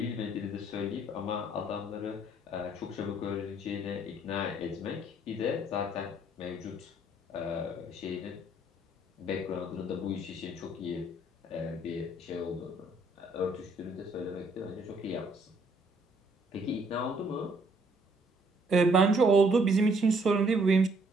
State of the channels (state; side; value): normal; both; correlation 0.65